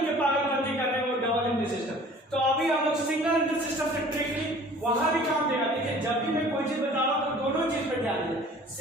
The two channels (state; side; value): normal; both; correlation 0.48